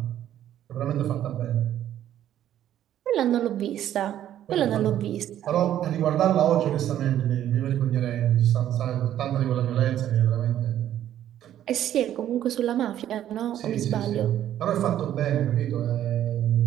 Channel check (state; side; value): quieter; left; 11.5 dB